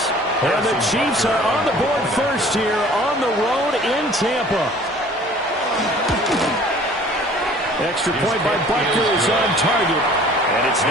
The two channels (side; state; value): both; normal; correlation 0.50